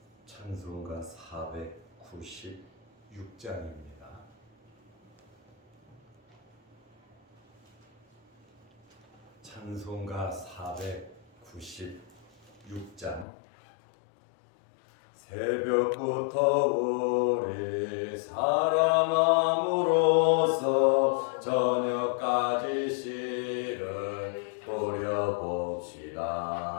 찬송가 496장입니다. 찬송가 496장. 새벽부터 우리 사랑함으로써 저녁까지 씨를 뿌려봅시다.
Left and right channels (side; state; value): right; drops out; at 13.2 s